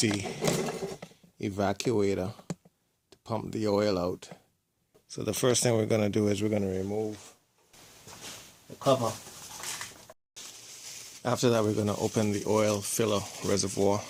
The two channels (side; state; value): both; identical; correlation 1.00